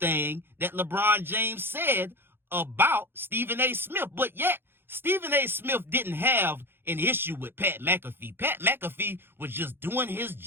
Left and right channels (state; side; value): late; left; 0.10 ms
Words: that LeBron James said about Stephen A. Smith, but yet Stephen A. Smith didn't have an issue with Pat McAfee. Pat McAfee was just doing his